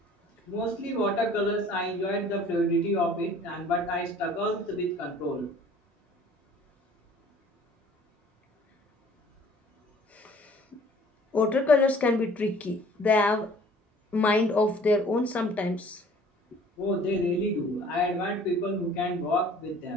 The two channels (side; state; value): both; normal; correlation 0.52